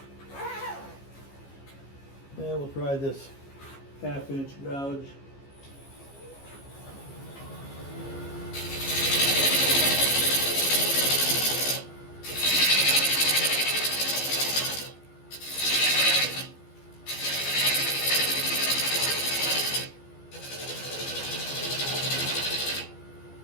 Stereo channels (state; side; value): late; right; 15 ms